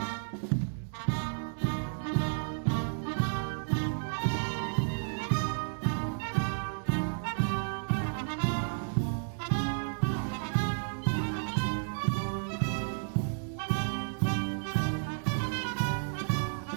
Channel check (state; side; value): silent; left; digital silence